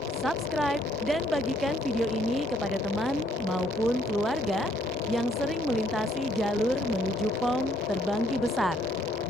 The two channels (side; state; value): both; normal; correlation 0.67